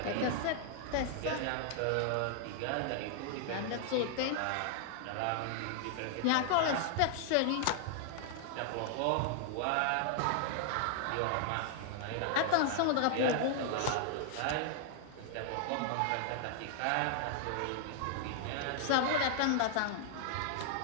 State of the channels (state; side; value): different; both; correlation 0.00